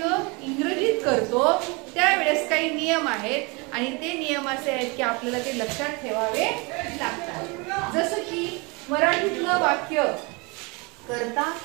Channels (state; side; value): quieter; left; 28.7 dB